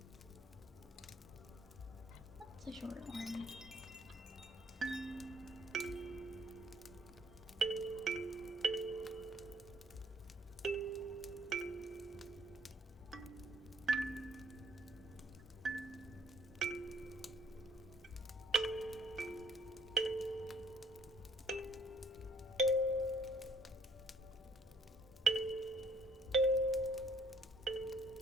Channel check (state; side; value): normal; both; correlation 0.61